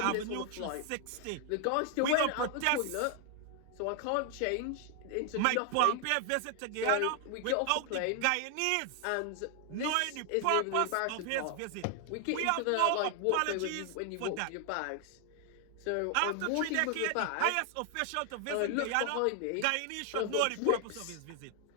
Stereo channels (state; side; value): different; both; correlation 0.00